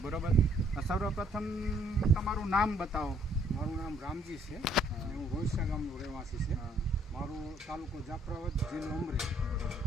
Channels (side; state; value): both; normal; correlation 0.65